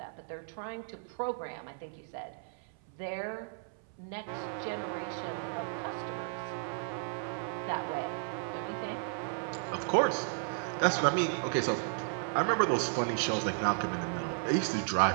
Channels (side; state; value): left; silent; 55 dB below the other